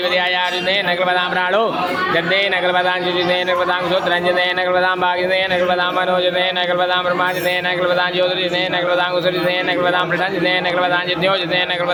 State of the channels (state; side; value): identical; both; correlation 1.00